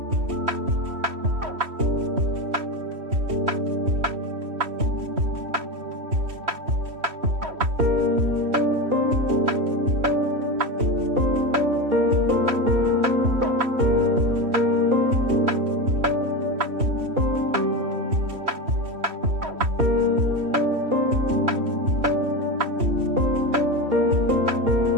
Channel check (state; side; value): late; left; 3.1 ms